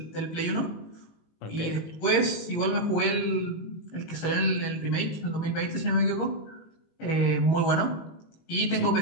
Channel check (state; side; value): late; right; 19 ms